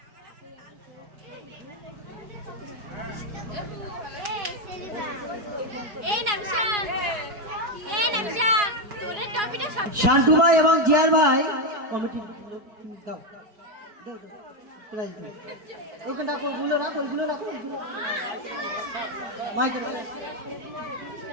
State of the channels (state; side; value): late; left; 4.8 ms